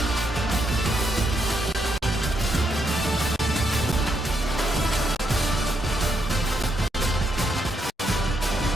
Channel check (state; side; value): normal; both; correlation 0.78